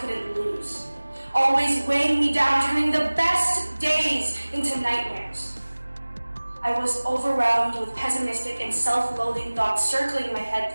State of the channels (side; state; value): both; inverted; correlation -1.00